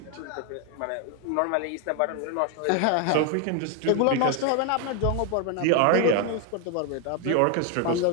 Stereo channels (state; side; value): different; both; correlation 0.01